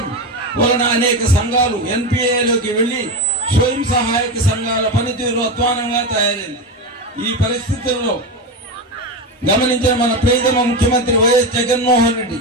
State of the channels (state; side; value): normal; both; correlation 0.17